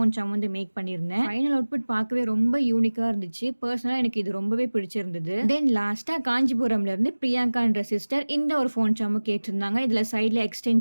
சாம் வந்து மேக் பண்ணியிருந்தேன். ஃபைனல் அவுட்புட் பார்க்கவே ரொம்ப யூனிக்கா இருந்துச்சு. பர்சனலா எனக்கு இது ரொம்பவே பிடிச்சிருந்தது. தென் லாஸ்டா காஞ்சிபுரம்ல இருந்து பிரியங்கான்ற சிஸ்டர் இந்த ஒரு ஃபோன் சாமும் கேட்டிருந்தாங்க. இதுல சைட்ல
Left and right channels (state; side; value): inverted; both; correlation -1.00